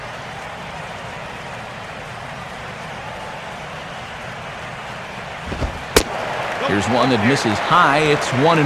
Here's one that misses high. It's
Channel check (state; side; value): identical; both; correlation 1.00